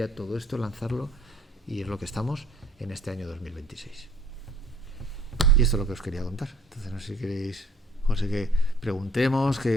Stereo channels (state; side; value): normal; both; correlation 0.58